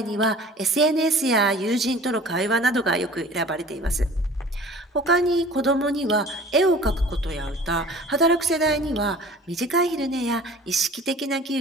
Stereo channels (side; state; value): both; normal; correlation 0.45